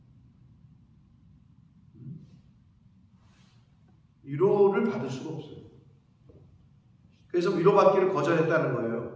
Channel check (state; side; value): identical; both; correlation 1.00